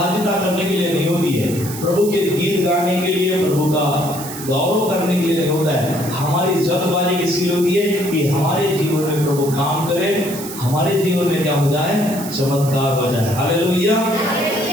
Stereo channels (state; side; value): noise; right; hiss, 11 dB below the sound